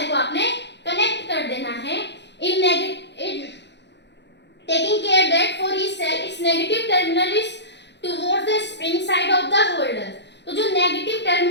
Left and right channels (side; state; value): right; late; 0.51 ms